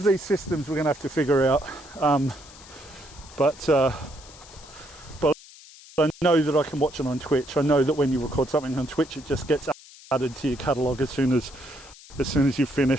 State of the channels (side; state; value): left; noise; hiss, 20 dB below the sound